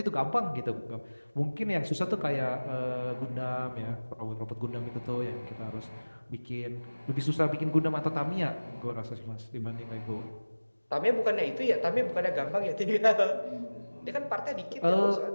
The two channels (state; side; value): inverted; both; correlation -1.00